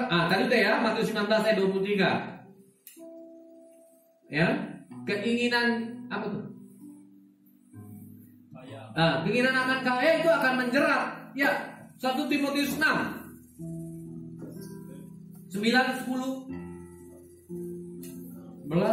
tadi udah ya, Matius 19 ayat 23. Ya, keinginan apa tuh? Keinginan akan kaya itu akan menjerat. Ya, 1 Timotius 6 9, 10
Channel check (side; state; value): both; identical; correlation 1.00